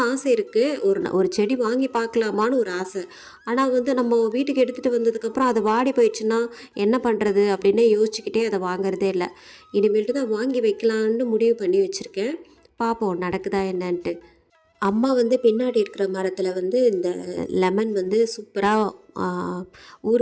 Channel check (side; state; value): both; identical; correlation 1.00